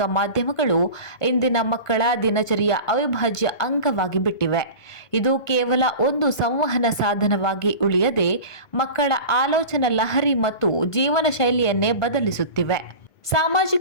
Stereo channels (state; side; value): late; right; 1.5 ms